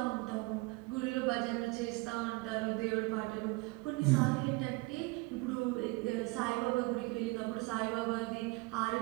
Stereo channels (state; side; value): quieter; left; 25.1 dB